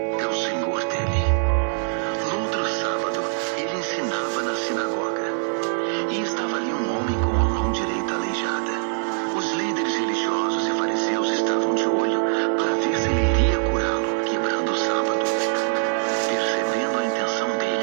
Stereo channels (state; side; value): silent; left; digital silence